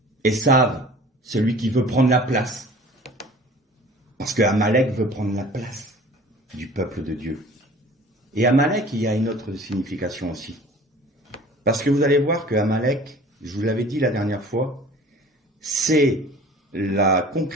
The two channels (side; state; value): both; normal; correlation 0.45